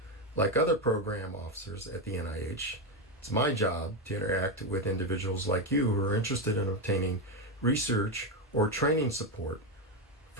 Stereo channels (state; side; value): normal; both; correlation 0.09